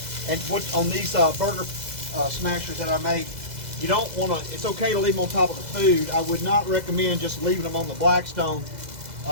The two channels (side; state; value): left; late; 2.0 ms